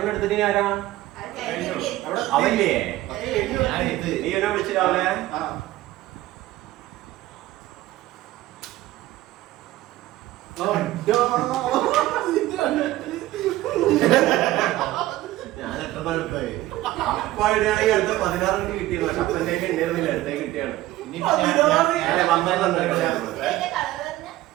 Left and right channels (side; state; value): left; quieter; 16.2 dB